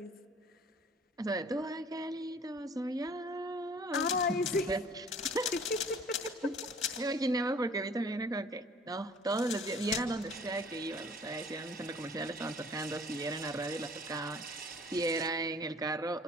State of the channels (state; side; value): normal; both; correlation 0.52